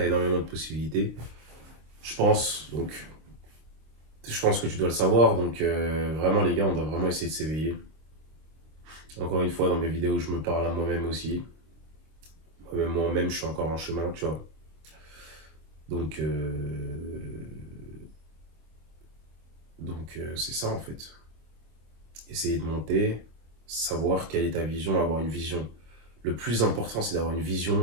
énormément de possibilités. Je pense, donc, Je pense que tu dois le savoir, donc vraiment les gars, on doit vraiment essayer de s'éveiller. Encore une fois, dans mes vidéos, je me parle à moi-même aussi. Moi-même, je suis encore en chemin, tu vois. Donc, c'est ça en fait. Essayer de monter, savoir quelle est ta vision, avoir une vision. Le plus important, c'est d'avoir une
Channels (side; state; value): left; late; 26 ms